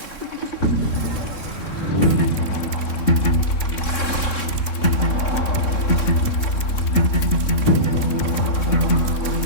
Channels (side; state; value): right; late; 3.6 ms